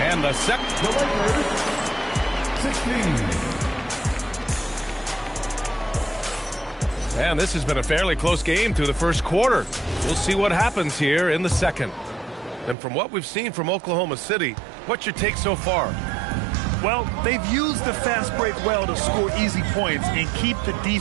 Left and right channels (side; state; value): left; drops out; at 12.8 s